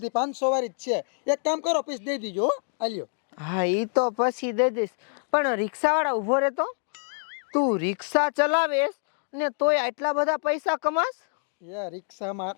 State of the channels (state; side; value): silent; right; digital silence